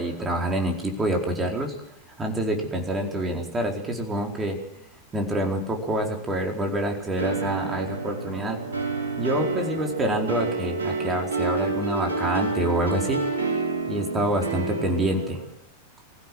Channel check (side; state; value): both; normal; correlation 0.14